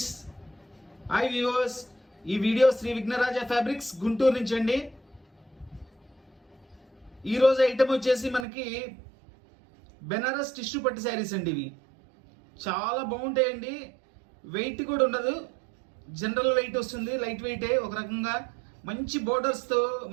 hi viewers. ఈ video Shri Vighnaraja fabrics Guntur నుంచి అండి. ఈరోజు ఐటమ్ వచ్చేసి మనకి బెనారస్ టిష్యూ పట్టు శారీస్ అండి. ఇవి చాలా బాగుంటాయండి. వెయిట్ కూడా ఉండదు, జనరల్ వెయిట్ వస్తుంది, లైట్ వెయిటే. ఒక రకంగా మంచి బోర్డర్స్తో,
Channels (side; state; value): left; drops out; at 8.5 s